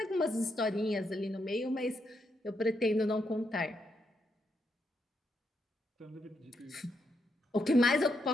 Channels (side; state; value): both; normal; correlation 0.80